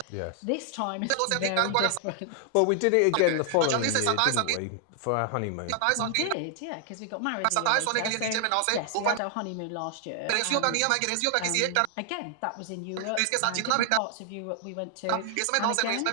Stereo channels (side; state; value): both; different; correlation 0.00